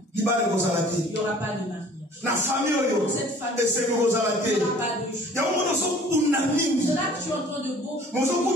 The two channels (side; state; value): both; normal; correlation 0.51